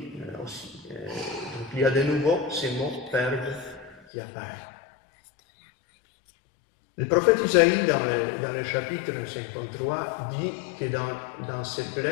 aussi. Donc il y a de nouveau ces mots « perdre » qui apparaissent. Le prophète Isaïe, dans le chapitre 53, dit que dans ces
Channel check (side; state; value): right; drops out; at 4.0 s